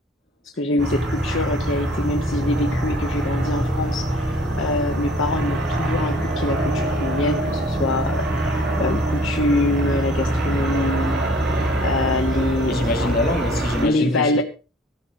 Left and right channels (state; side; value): normal; both; correlation 0.53